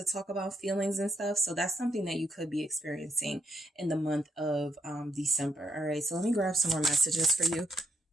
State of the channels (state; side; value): normal; both; correlation 0.76